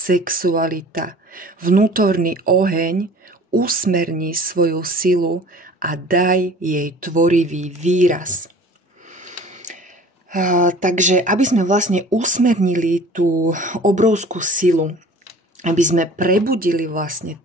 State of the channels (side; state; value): both; normal; correlation 0.46